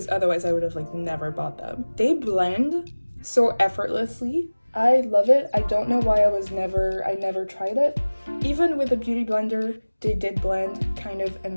otherwise I would have like never bought them. They blend so effortlessly. I love it. I don't know why I never tried it. Even with a beauty blender, they did blend kind of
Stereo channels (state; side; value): inverted; both; correlation -1.00